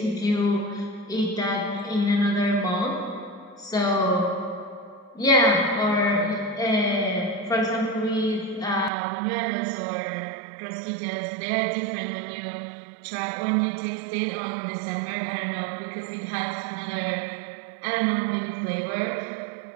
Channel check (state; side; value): drops out; left; at 8.9 s